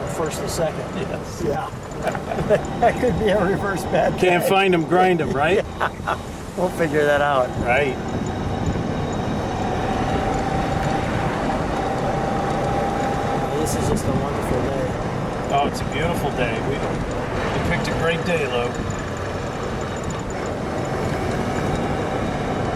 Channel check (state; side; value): identical; both; correlation 1.00